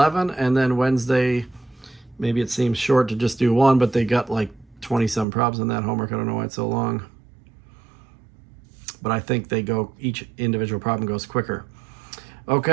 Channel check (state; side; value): drops out; left; at 5.2 s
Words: and then Wednesday, maybe it seems short to just do one, but they got like 20-some problems in that homework. I don't know why it's so long. But I think each individual problem goes quicker.